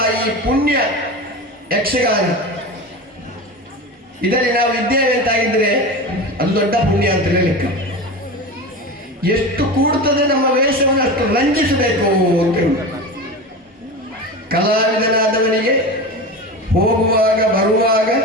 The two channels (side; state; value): both; normal; correlation 0.27